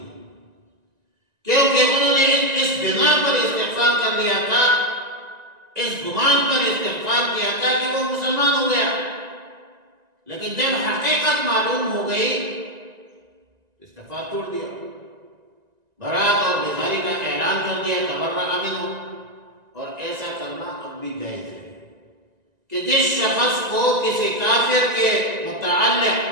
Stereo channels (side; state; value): left; late; 1.9 ms